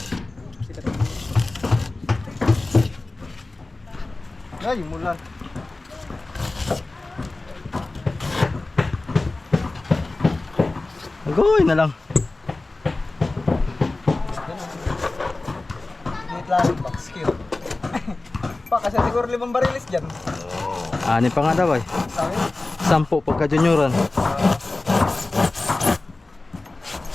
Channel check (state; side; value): quieter; right; 3.1 dB